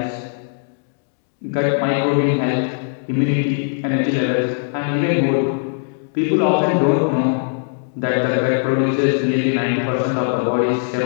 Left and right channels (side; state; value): right; silent; digital silence